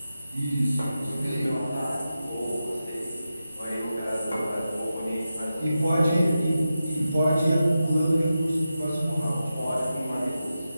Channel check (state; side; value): inverted; both; correlation -0.91